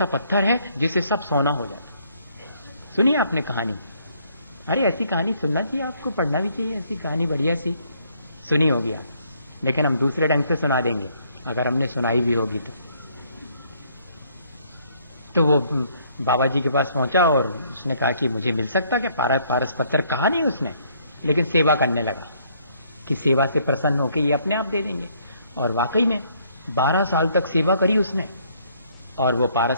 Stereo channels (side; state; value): both; inverted; correlation -0.66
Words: पत्थर है जिससे सब सोना हो जाता। सुनिए आपने कहानी, अरे ऐसी कहानी सुनना चाहिए, आपको पढ़ना भी चाहिए, ऐसी कहानी बढ़िया सी सुनी होगी आप, लेकिन हम दूसरे ढंग से सुना देंगे अगर हमने सुनाई भी होगी तो वो बाबा जी के पास पहुंचा और उसने कहा कि मुझे मिल सकता क्या पारस पत्थर। कहा नहीं उसने, लेकिन सेवा करने लगा कि सेवा से प्रसन्न होकर ये अपने आप दे देंगे। और वाकई में 12 साल तक सेवा करी उसने, और वो